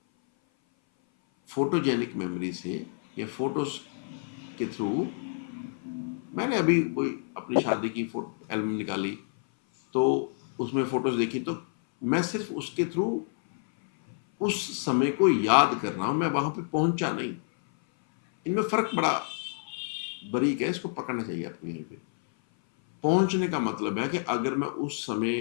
फोटोजेनिक मेमोरी से या फोटोज के थ्रू, मैंने अभी कोई अपनी शादी की फोटो एल्बम निकाली तो उसमें फोटोज देखी, तो मैं सिर्फ उसके थ्रू उस समय को याद कर रहा हूं, मैं वहां पे पहुंचा नहीं। इनमें फर्क बड़ा बारीक है, इसको पकड़ना चाहिए आपको। यहीं पे पहुंचने का मतलब है कि अगर मैं उस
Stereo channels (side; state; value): right; silent; 57 dB below the other